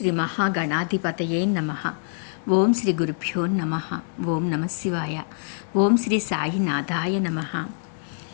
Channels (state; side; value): silent; right; 62 dB below the other